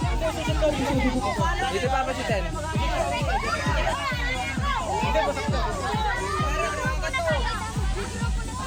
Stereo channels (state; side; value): identical; both; correlation 1.00